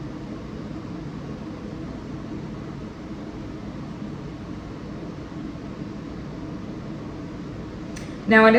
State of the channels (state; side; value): identical; both; correlation 1.00